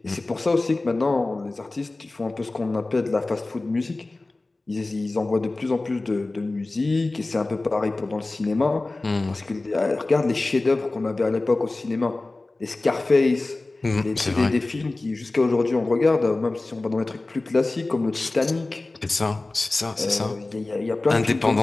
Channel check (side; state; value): right; quieter; 3.1 dB